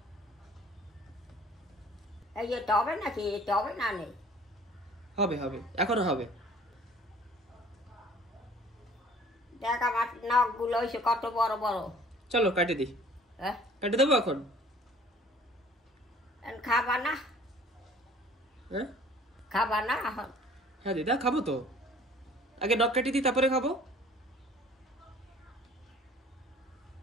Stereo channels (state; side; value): normal; both; correlation 0.52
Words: এই যে তবে নাকি তবে না নেই হবে হবে, এখনো হবে। দেখ আমার নখ গুলো হয়েছে কত বড় বড় চলো কাটে দিই। হ্যাঁ কাটে দেবো এখন? খাবা না হ্যাঁ খাবা না এখন হ্যাঁ দিদা, খাবো তো। আগে নখ কাটি দিই, তারপরে খাবো।